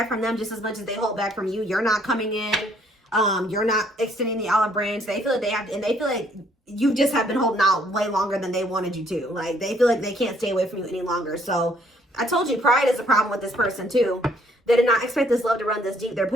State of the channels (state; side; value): normal; both; correlation 0.64